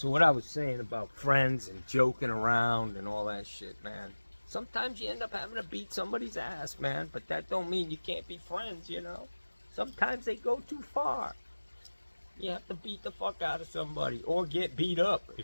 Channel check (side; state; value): both; inverted; correlation -1.00